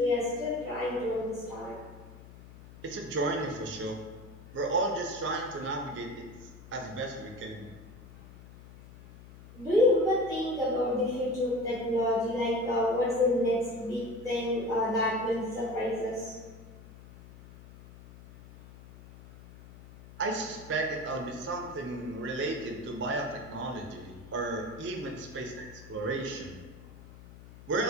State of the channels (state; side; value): noise; left; hum, 18 dB below the sound